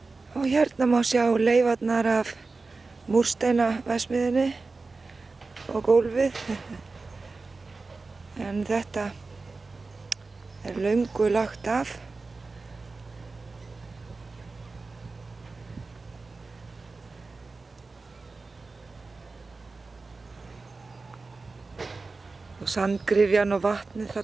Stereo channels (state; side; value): quieter; left; 3.8 dB